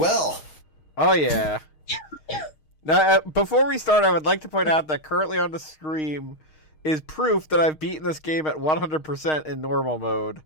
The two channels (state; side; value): late; right; 6.4 ms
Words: Oh yeah. Now, before we start, I would like to point out that currently on the stream is proof that I've beaten this game at 100% in normal mode.